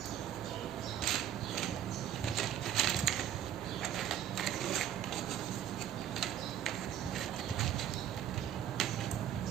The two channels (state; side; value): quieter; left; 10.5 dB